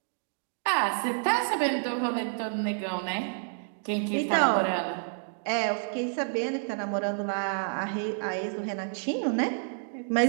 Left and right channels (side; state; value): left; silent; digital silence